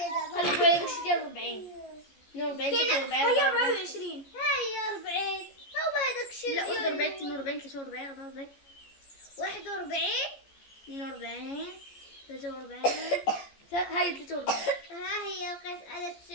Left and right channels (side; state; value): right; late; 14 ms